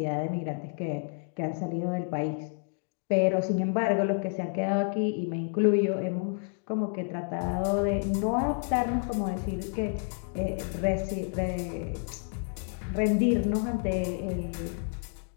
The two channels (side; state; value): right; silent; 58 dB below the other